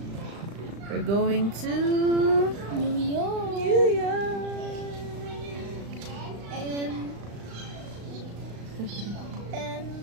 We're going to New York. New York.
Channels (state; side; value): late; left; 35 ms